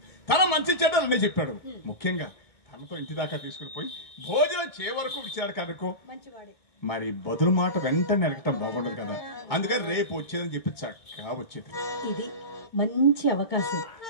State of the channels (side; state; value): right; late; 2.2 ms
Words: తన మంచి చెడ్డలు అన్నీ చెప్పాడు. ముఖ్యంగా తనతో ఇంటి దాకా తీసుకుని పోయి భోజనం చే వరకు ఇచ్చాడు కనుకో. మరి బదులు మాట వెంటనే అడగటం బాగుండదు కదా. అందుకని రేపు వచ్చేదని చెప్పి చక్కగా వచ్చేది. ఇది మంచి అవకాశం.